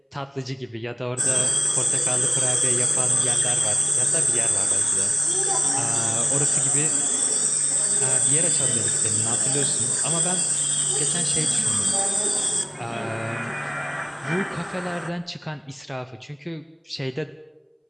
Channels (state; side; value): identical; both; correlation 1.00